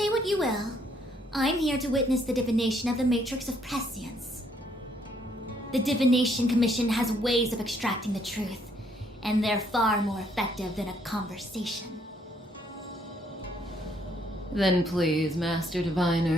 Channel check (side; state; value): both; normal; correlation 0.69